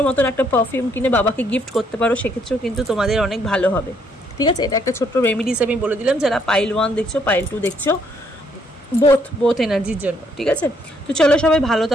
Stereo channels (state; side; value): normal; both; correlation 0.70